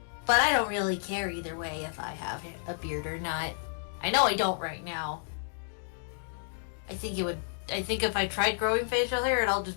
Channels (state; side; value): silent; right; digital silence